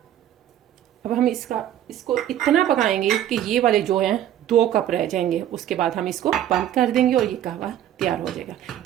अब हम इसको इतना पकाएंगे कि ये वाले जो हैं 2 कप रह जाएंगे। उसके बाद हम इसको बंद कर देंगे और ये कहवा तैयार हो जाएगा।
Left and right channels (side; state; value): left; quieter; 11.5 dB